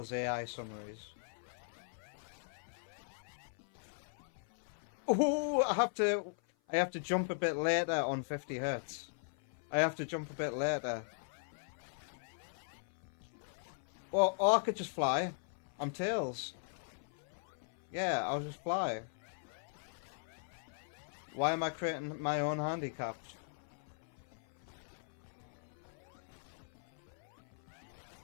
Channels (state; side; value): silent; right; 52 dB below the other